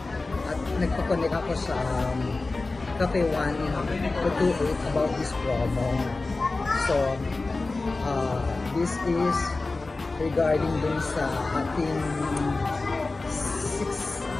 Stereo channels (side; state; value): right; quieter; 3.4 dB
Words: At nagpa-connect ako sa Cafe 1-28 about this promo. So, this is regarding dun sa ating